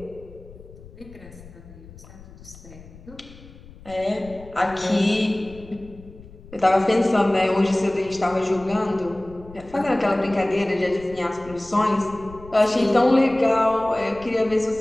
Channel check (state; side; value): noise; left; rumble, 19 dB below the sound